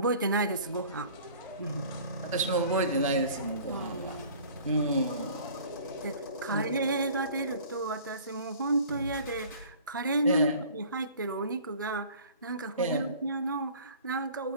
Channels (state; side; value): inverted; both; correlation -0.48